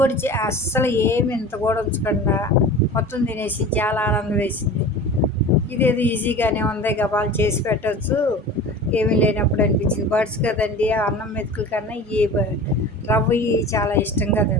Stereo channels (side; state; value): both; normal; correlation 0.36